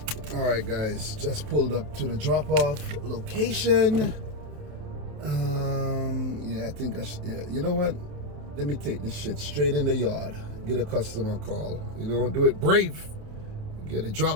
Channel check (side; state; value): left; late; 28 ms